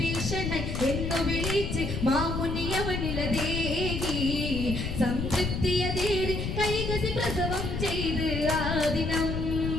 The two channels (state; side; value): noise; left; rumble, 3 dB below the sound